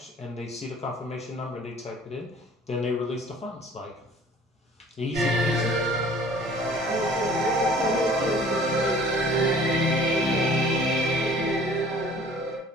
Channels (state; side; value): normal; both; correlation 0.50